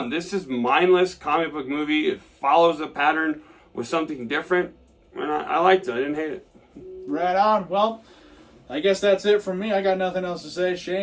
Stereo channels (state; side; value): identical; both; correlation 1.00